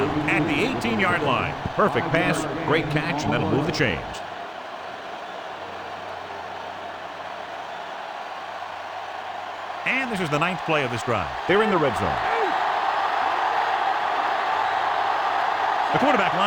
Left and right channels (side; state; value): both; identical; correlation 1.00